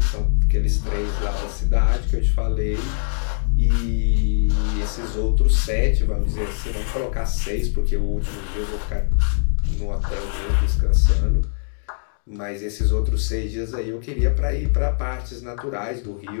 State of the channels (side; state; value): right; silent; digital silence